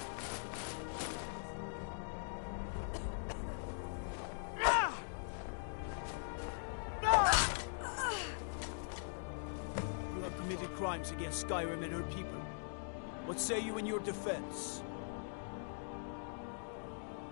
Crimes against Skyrim and her people. What say you in your defense?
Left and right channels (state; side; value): silent; right; digital silence